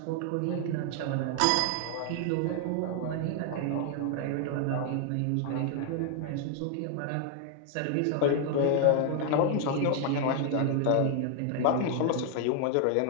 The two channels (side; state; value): both; different; correlation 0.00